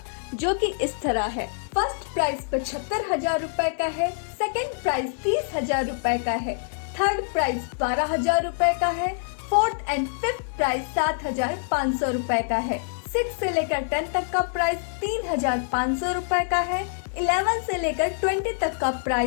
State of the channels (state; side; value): silent; right; digital silence